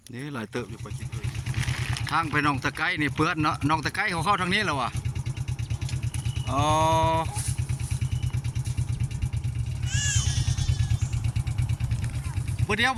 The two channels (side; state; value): both; identical; correlation 1.00